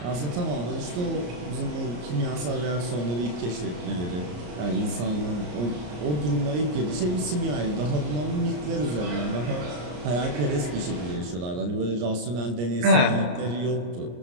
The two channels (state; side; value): late; left; 33 ms